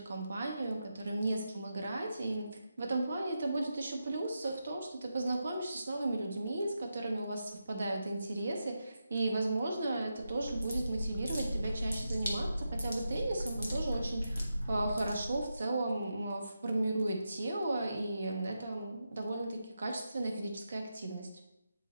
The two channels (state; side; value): inverted; both; correlation -0.87